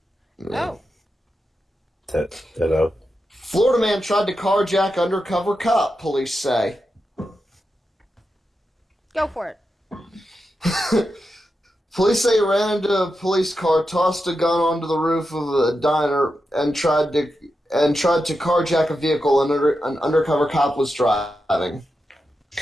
Oh. Hello. Florida man tried to carjack undercover cop, police say. Go for it. Police say he ran into a police car, tossed a gun onto the roof of a diner, and tried to carjack a vehicle an undercover cop was driving.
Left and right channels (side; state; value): both; normal; correlation 0.89